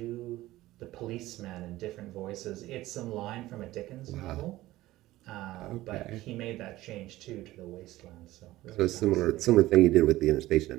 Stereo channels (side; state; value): left; quieter; 16.7 dB